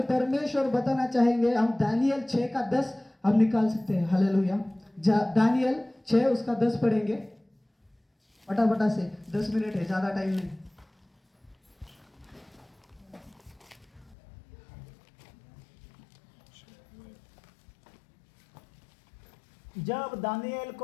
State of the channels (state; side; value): drops out; right; at 14.2 s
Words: परमेश्वर बताना चाहेंगे, हम दानियल 6:10 हम निकाल सकते हैं. हालेलुया. दानियल 6 उसका 10 पढ़ेंगे फटाफटा से. 10 मिनट है, ज्यादा टाइम नहीं. जब दानिएल